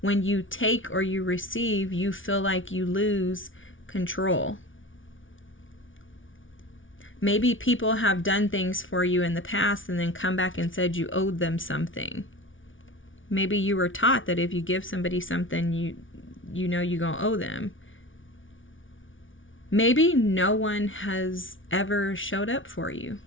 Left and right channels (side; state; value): right; late; 0.57 ms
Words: when you take or you receive, you feel like you lose control. Maybe people have done things for you in the past and then come back and said you owed them something. Maybe you were taught that if you give somebody something, you know you're going to owe them. Maybe no one has ever showed up for you.